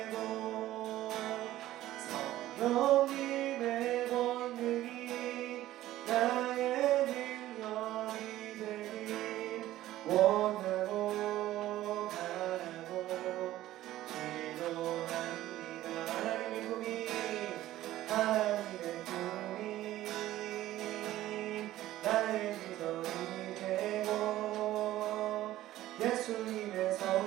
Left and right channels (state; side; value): quieter; left; 14.7 dB